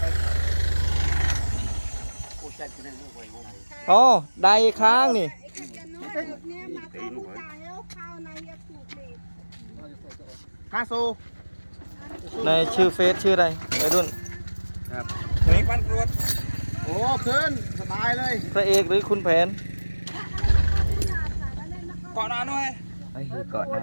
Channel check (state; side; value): inverted; both; correlation -1.00